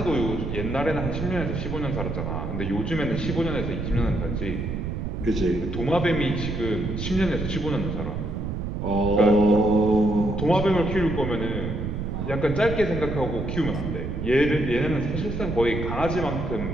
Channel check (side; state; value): right; noise; rumble, 4 dB below the sound